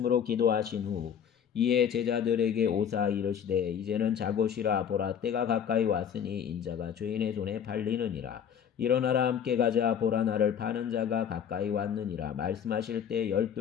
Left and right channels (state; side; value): quieter; right; 8.3 dB